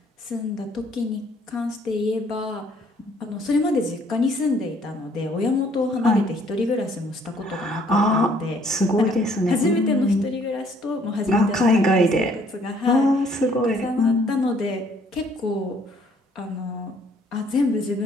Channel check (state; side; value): normal; both; correlation 0.62